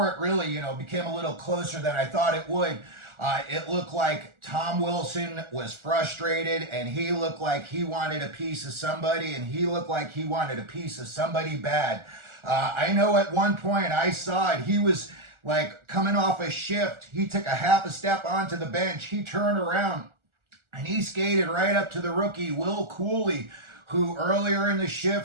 it really, became a little closer than I thought it would, it looked like Tom Wilson was frustrated, and he looked like he wanted a piece of somebody, and he looked like he wanted a piece of somebody bad. I know at one point I saw it. He was like coming off a shift. He took a half a step onto the bench. He turned around, and he skated right up to the rookie, Will Cooley, who earlier in the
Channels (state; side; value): late; left; 1.4 ms